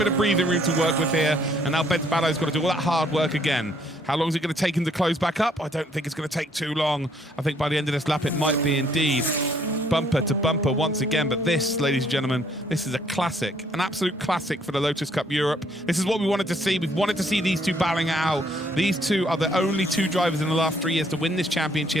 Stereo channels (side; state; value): both; normal; correlation 0.66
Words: of breathing room to work with here, and now Bence Ballo's got to do all that hard work again. How long is it going to take him to close back up? I don't think it's going to take too long. I think by the end of this lap it might be indeed bumper to bumper once again. But this, ladies and gentlemen, this is a classic, an absolute classic for the Lotus Cup Europe. This is what we wanted to see. We've wanted to see these two battling it out. These two are the only two drivers in the last 3 years to win this